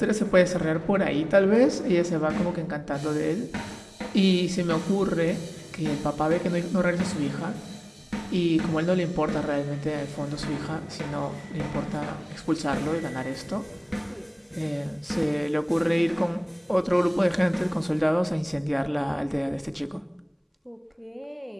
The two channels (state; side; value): identical; both; correlation 1.00